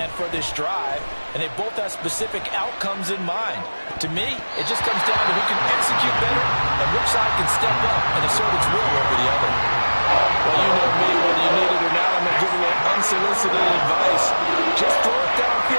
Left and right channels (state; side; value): inverted; both; correlation -1.00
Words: for this drive, and they both have specific outcomes in mind. To me, it just comes down to who can execute better and which side can step up and assert its will over the other. Well, you know me, whether you need it or not, I'm going to give away unsolicited advice. Just throw it